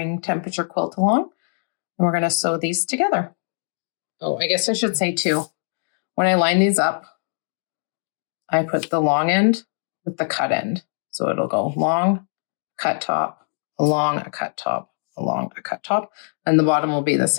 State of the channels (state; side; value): silent; right; digital silence